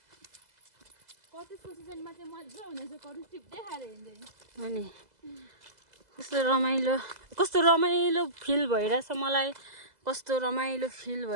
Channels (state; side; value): late; left; 2.0 ms